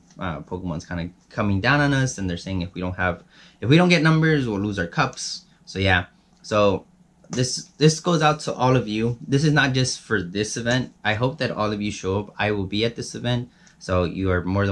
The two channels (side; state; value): both; identical; correlation 1.00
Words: Pokemon's kind of coming down on us, and they're saying if we don't get numbers, we'll lose our cups. So yeah, so this goes out to all of you. This is not just for this event. I hope that all of you show up. I will be at this event, so you are more